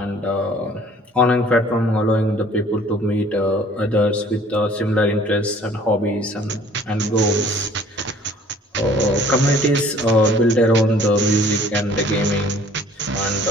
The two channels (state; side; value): normal; both; correlation 0.53